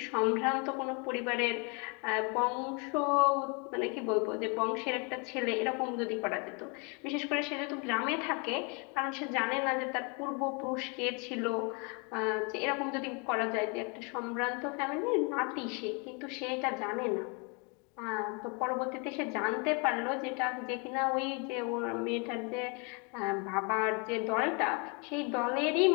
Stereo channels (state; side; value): quieter; right; 33.4 dB